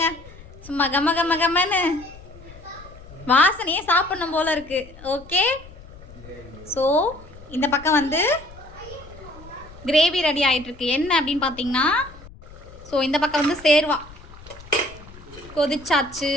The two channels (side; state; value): left; noise; rumble, 19 dB below the sound